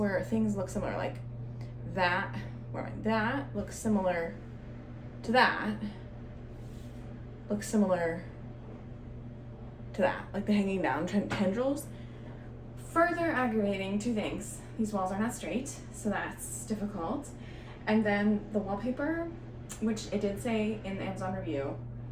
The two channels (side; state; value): both; identical; correlation 1.00